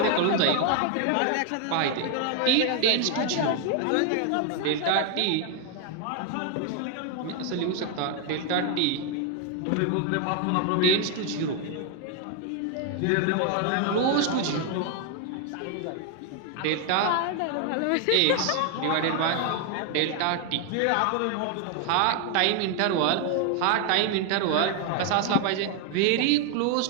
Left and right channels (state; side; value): different; both; correlation 0.00